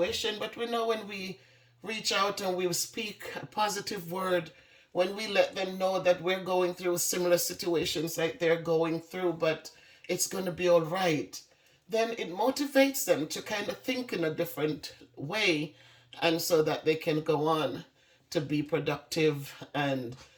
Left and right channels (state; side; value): identical; both; correlation 1.00